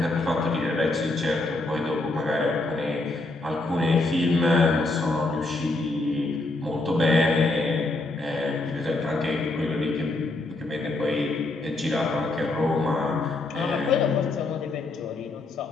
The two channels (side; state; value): right; quieter; 3.1 dB